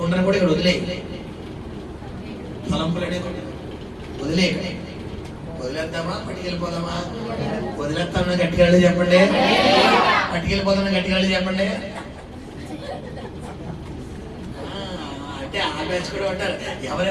కూడా ఇక్కడ వదిలేయాలి. తలంపులు అనే కొండ వదిలేయాలి. వదిలేద్దామా? పట్టుకెళ్ళిపోదామా? వదిలేస్తామన్నా గట్టిగా చెప్పండి. పట్టుకెళ్ళిపోదామని గట్టిగా చెప్పండి. అంటే ఆ బ్యాచ్ కూడా ఉంటారు. ఎవరి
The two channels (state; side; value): identical; both; correlation 1.00